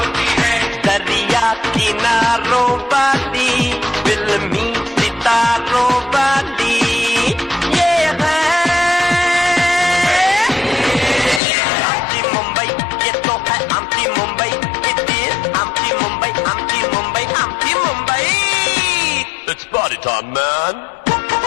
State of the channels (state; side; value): drops out; right; at 11.4 s